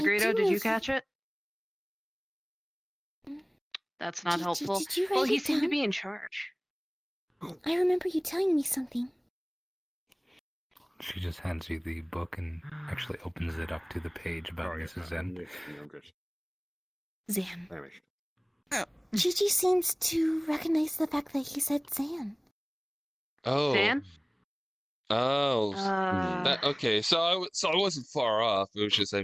did you catch it? That's not helpful. Did you write Well, he it seemed to down? be in charge. I remember you telling me something. She just hands you the book and actually opens it up to the page about Mrs. Zen. Zan. Chi-Chi seems to recognize the fact that he said Zan. Oh. Zan? Oh. Okay. So I wasn't far off. It was just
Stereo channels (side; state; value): both; identical; correlation 1.00